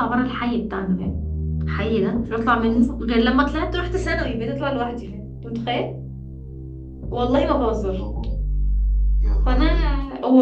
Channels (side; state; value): both; identical; correlation 1.00